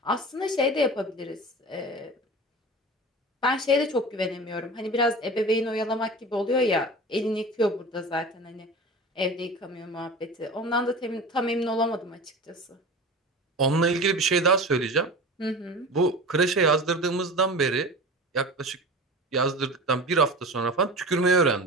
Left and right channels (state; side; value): normal; both; correlation 0.33